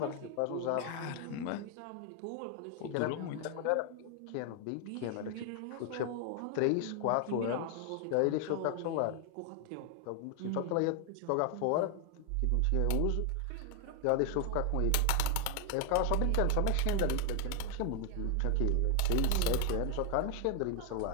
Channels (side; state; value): both; different; correlation 0.00